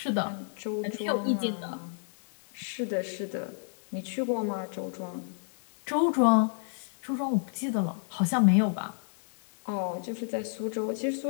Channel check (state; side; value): silent; right; digital silence